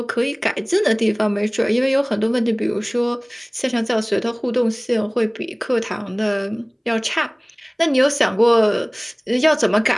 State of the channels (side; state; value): both; identical; correlation 1.00